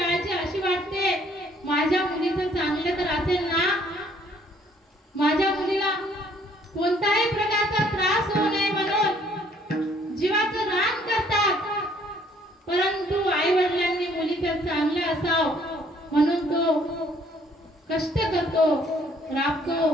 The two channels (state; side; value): normal; both; correlation 0.62